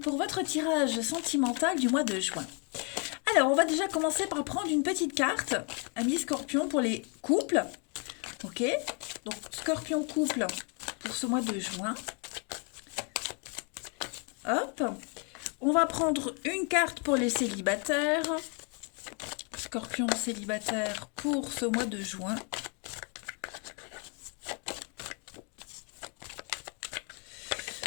votre tirage sentimental du mois de juin. Alors, on va déjà commencer par prendre une petite carte, Amis Scorpion, pour les couples. Ok, donc Scorpion couple pour ce mois de juin. Hop, on va prendre une carte pour les célibataires. Scorpion célibataire pour ce mois de juin.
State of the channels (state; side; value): quieter; right; 36.4 dB